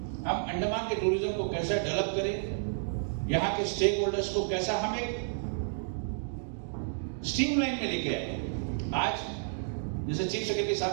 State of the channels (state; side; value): silent; left; digital silence